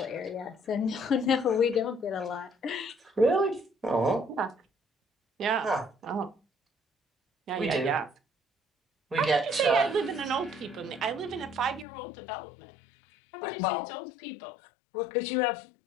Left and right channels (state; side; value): drops out; right; at 11.9 s